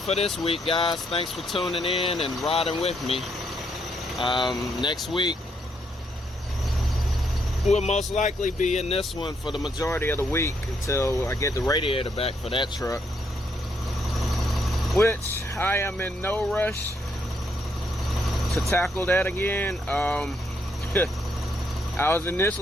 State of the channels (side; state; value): both; normal; correlation 0.75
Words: this week, guys. Thanks for tuning in and riding with me. Next week, we'll most likely be in this one for the majority of the week until I get the radiator back for that truck. which I am in no rush to tackle that again. I was